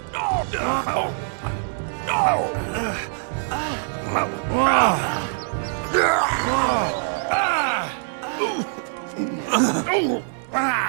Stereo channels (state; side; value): silent; left; 63 dB below the other